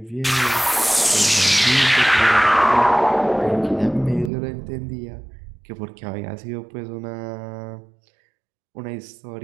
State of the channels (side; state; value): left; drops out; at 4.3 s